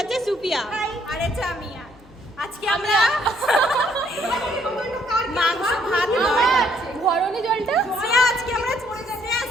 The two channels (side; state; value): left; noise; hum, 26 dB below the sound